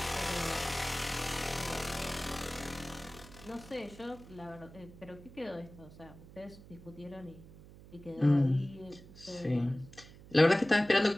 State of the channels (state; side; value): noise; right; hum, 19 dB below the sound